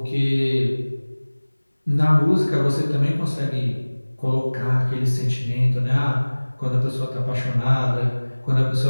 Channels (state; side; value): inverted; both; correlation -1.00